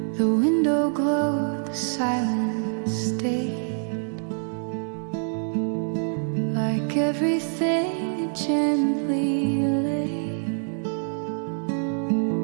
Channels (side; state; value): left; silent; 61 dB below the other